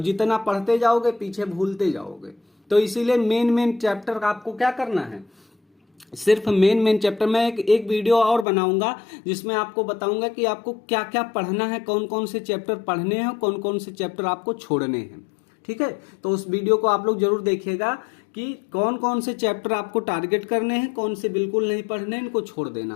जितना पढ़ते जाओगे पीछे भूलते जाओगे। तो इसीलिए मेन चैप्टर आपको क्या करना है, सिर्फ मेन चैप्टर। मैं एक वीडियो और बनाऊंगा जिसमें आपको बताऊंगा कि आपको क्या क्या पढ़ना है, कौन कौन से चैप्टर पढ़ने हैं, कौन कौन से चैप्टर आपको छोड़ने हैं, ठीक है। तो उस वीडियो को आप लोग जरूर देखिएगा कि कौन कौन से चैप्टर आपको टारगेट करने हैं, कौन से बिल्कुल नहीं पढ़ने, इनको छोड़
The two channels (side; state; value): right; drops out; at 8.5 s